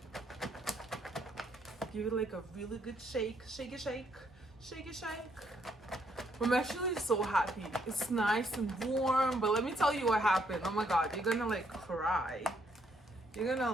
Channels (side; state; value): both; normal; correlation 0.71